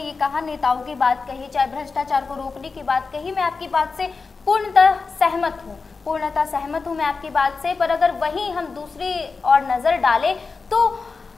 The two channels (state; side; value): quieter; right; 4.5 dB